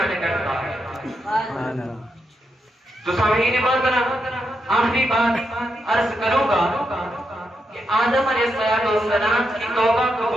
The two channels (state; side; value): normal; both; correlation 0.83